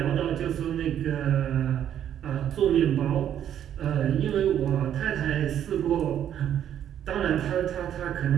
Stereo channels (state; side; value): quieter; left; 10.2 dB